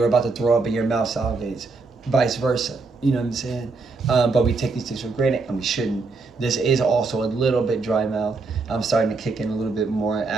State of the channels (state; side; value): quieter; left; 4.0 dB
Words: about to throw up and your mouth salivates, vice versa, you know what I'm saying? But we take these things for granted, and we shouldn't. This is also a little bit dry mouth. I'm starting to kick in a little bit more,